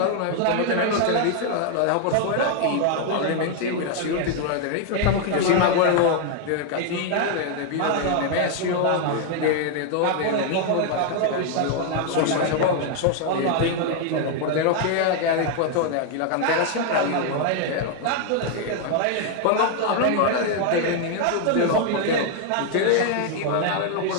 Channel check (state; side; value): different; both; correlation 0.00